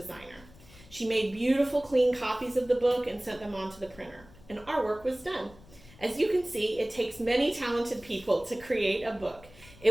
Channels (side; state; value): left; noise; rumble, 23 dB below the sound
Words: She made beautiful, clean copies of the book and sent them on to the printer, and our work was done. As you can see, it takes many talented people to create a book.